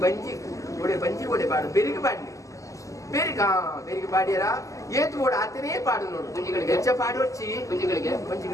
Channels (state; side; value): late; right; 0.16 ms